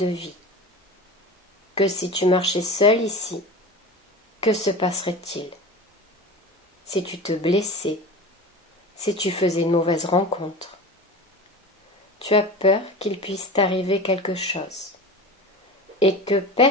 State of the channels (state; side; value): normal; both; correlation 0.32